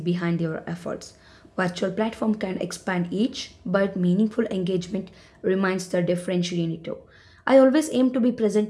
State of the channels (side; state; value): both; identical; correlation 1.00